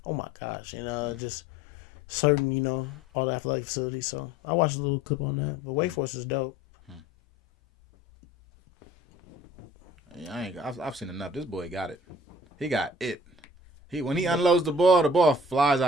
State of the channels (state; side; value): normal; both; correlation 0.49